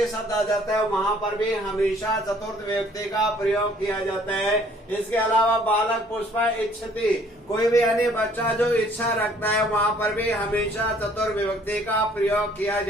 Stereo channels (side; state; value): both; normal; correlation 0.59